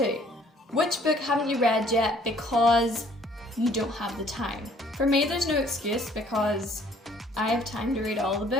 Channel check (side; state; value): both; normal; correlation 0.59